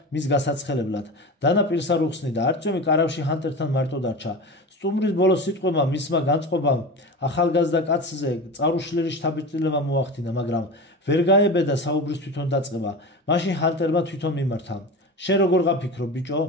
მის გასაცხელებლად დანა პირს არ უხსნიდა არწომი კარავში ჰანტერთან მარტო დარჩა სტუმრის ბოლო სიტყვებმა მისმა განწყობამ ახალგაზრდა კაცზე წარუშლილი შთაბეჭდილება მოახდინა მაგრამ ვერ გაებედა საუბრის თვითონ დაწყება მაშინ ჰანტერმა თვითონ მიმართა შენ როგორ გაფიქრო ბიჭო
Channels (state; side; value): normal; both; correlation 0.28